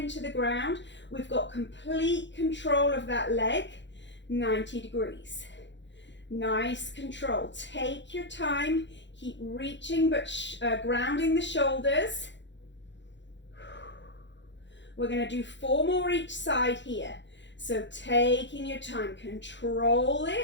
the ground. We've got complete control of that leg, 90 degrees. Nice control. Take your time. Keep reaching but grounding the shoulders. We're going to do 4 more each side here. So taking your time, control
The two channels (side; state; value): right; late; 0.53 ms